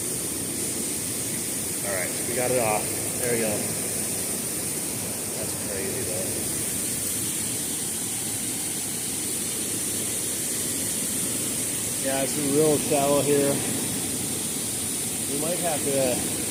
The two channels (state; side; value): identical; both; correlation 1.00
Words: Alright, we got it off. There we go. That's crazy though. Yeah, it's real shallow here. We might have to